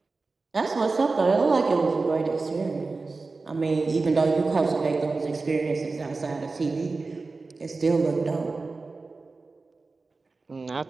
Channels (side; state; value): left; quieter; 3.8 dB